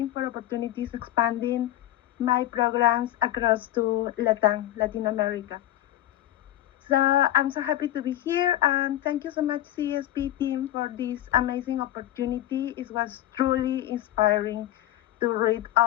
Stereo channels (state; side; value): quieter; right; 13.6 dB